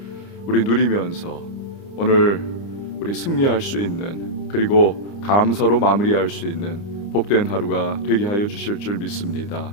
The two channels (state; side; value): late; right; 29 ms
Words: 우리 누리면서 오늘 우리 승리할 수 있는, 그리고 감사로 마무리할 수 있는 복된 하루가 되게 하여 주실 줄 믿습니다.